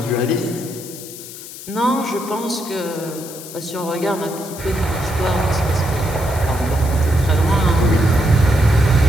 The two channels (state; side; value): noise; left; hiss, 13 dB below the sound